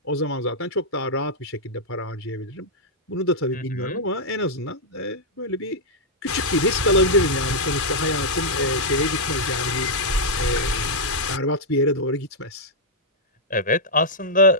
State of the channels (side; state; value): both; normal; correlation -0.07